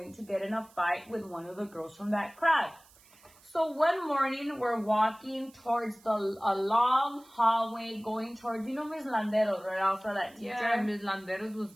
to get in a fight with one of the girls from that crowd. So one morning we're walking towards a long hallway going towards, you know, Miss Landeros, right? Also that teacher. Yeah, Miss Landeros was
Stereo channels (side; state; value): right; noise; hiss, 27 dB below the sound